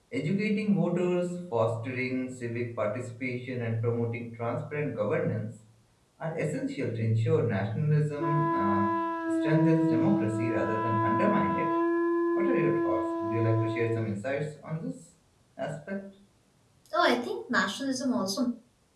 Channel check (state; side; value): identical; both; correlation 1.00